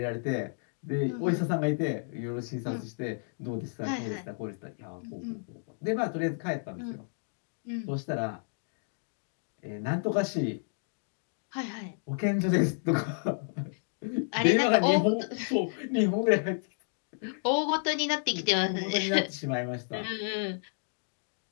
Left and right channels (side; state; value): right; silent; digital silence